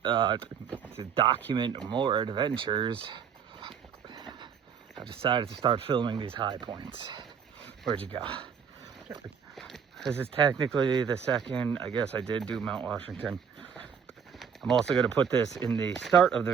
document more adventures, I decided to start filming these high points. Where'd you go? This is technically the second. I guess I did do Mount Washington. I'm also going to put this in the start of the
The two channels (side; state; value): left; quieter; 7.2 dB